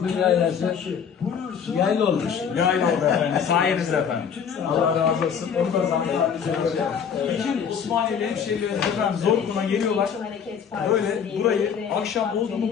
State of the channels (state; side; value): quieter; right; 7.3 dB